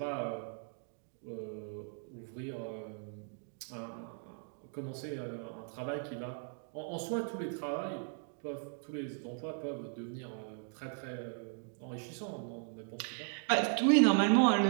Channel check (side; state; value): left; silent; 53 dB below the other